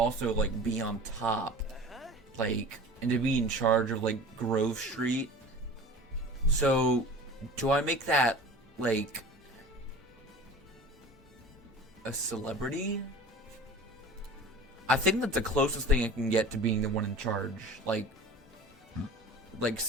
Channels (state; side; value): normal; both; correlation 0.38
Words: like, be on top. Like, and to be in charge of, like, Grove Street. So, do I make that, like, a celebrity? I think that's the closest thing I can get to being the one in charge. Like